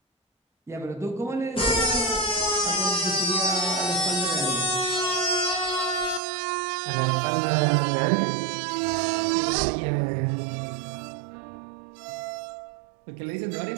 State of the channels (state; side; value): drops out; left; at 6.2 s